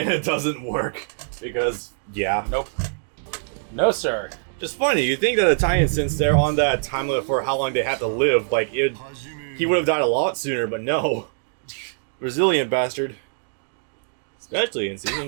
doesn't work. Because, yeah. Nope. No, sir. Just funny, you think that Italian, since they're on that time limit for how long they have to live, like, he would have died a lot sooner, but no. Resilient bastard. Especially in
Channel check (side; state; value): left; silent; digital silence